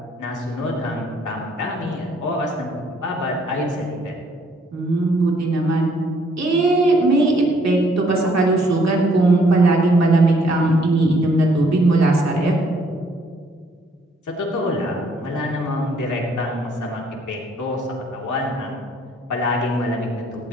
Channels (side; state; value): both; normal; correlation 0.65